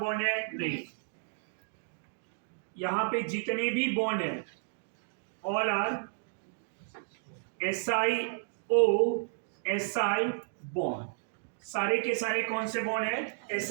है? नहीं. यहाँ पे जितने भी बॉन्ड हैं ऑल आर SiO बॉन्ड, सारे के सारे कौन से बॉन्ड है?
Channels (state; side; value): silent; left; digital silence